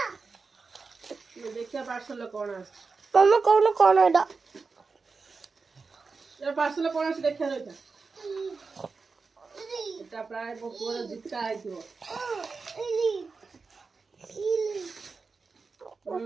ଦେଖିବା ପାର୍ସଲ କଣ ଆସିଛି। ମାମା କହୁନ କଣ ଏଟା? ପାର୍ସଲ କଣ ଅଛି ଦେଖିବା ରହିଥା। এটা ପ୍ରାୟ ମୋ ପୁଅର ଜୁତା ହେଇଥିବ।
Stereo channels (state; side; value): quieter; left; 4.5 dB